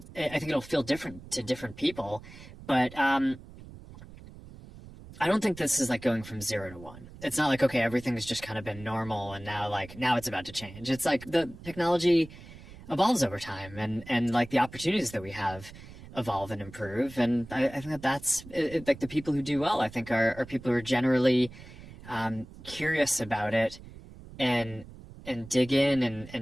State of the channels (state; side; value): noise; right; rumble, 17 dB below the sound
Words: think it'll feel different to different people, but I don't think this is like going from 0 to 1. It's not like, okay, everything's just kind of been normal and now it's about to change. It's like the technology evolves over time, and like the opportunities that we have evolve and improve. And I think that's like the people who do well, I think are people who are generally curious about it and dig in